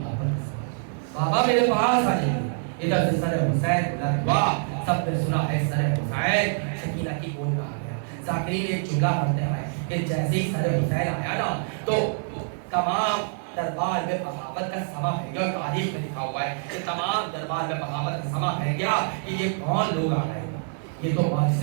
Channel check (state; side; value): silent; left; 61 dB below the other